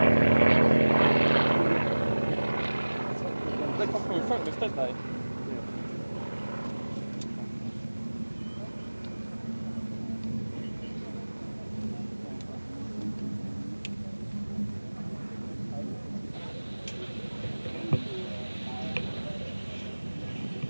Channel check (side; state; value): both; inverted; correlation -1.00